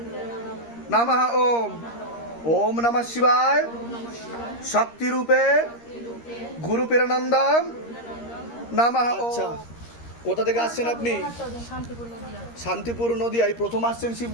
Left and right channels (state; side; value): late; right; 13 ms